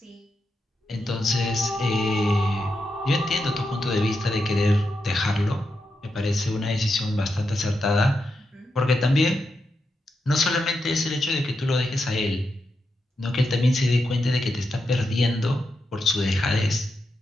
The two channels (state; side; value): normal; both; correlation 0.86